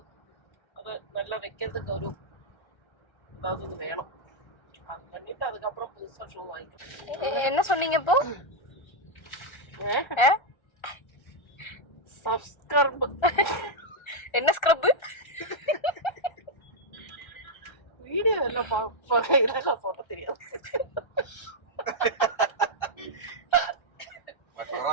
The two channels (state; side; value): late; right; 1.3 ms